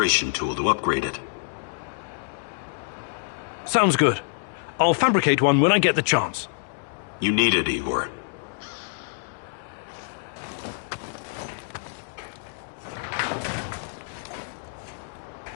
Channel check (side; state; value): right; silent; digital silence